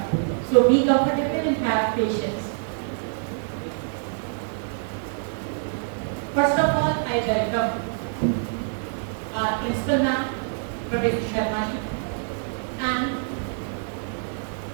So be comfortable and have patience. First of all, I welcome our principal ma'am, Professor Sharma, and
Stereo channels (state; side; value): silent; left; digital silence